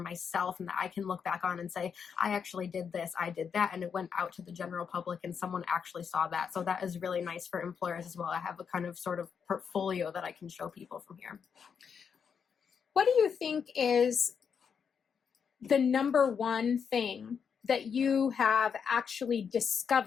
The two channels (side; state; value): right; quieter; 6.8 dB